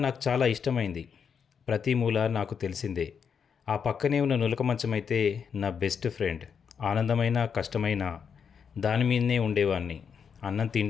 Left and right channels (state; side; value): quieter; right; 6.8 dB